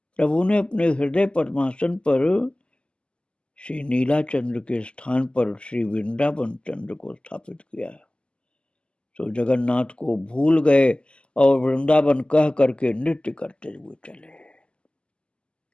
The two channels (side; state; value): right; late; 0.051 ms